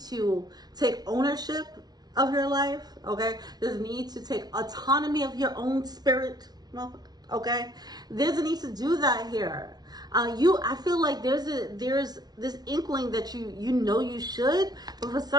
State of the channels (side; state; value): left; late; 0.19 ms